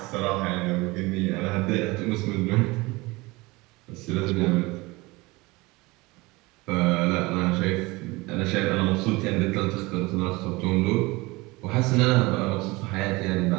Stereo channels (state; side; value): quieter; left; 22.8 dB